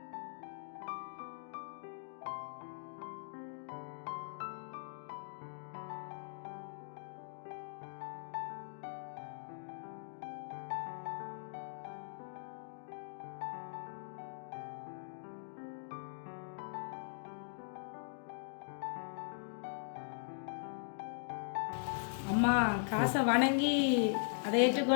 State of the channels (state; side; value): silent; right; digital silence